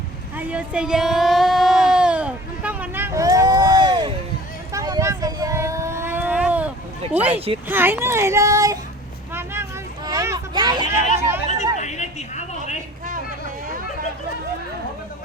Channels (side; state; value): both; normal; correlation 0.46